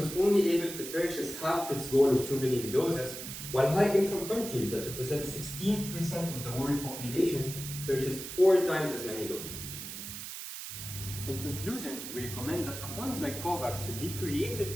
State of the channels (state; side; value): noise; right; hiss, 8 dB below the sound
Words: only able to purchase half its goal of 2 billion doses, while high-income countries that represent 16% of the world population purchased 4 times as many doses. In conclusion, we recommend that a fund like Covax should be